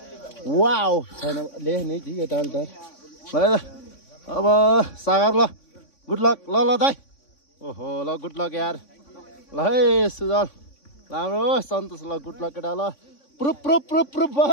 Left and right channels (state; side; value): late; right; 3.5 ms